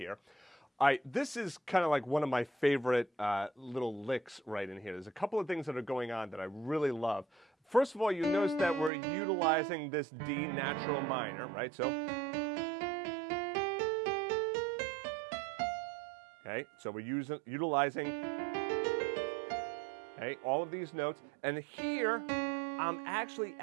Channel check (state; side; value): drops out; left; at 8.9 s